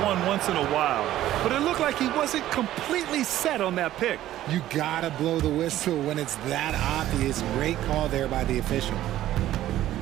one once in a while, but it looked like he wasn't completely set on that pick. You gotta blow the whistle when it's that obvious. Great call there by the official.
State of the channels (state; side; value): quieter; left; 13.6 dB